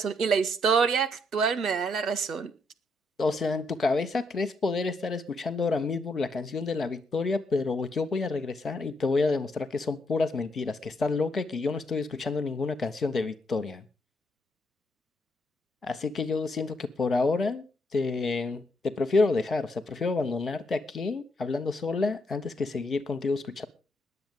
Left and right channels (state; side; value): normal; both; correlation 0.76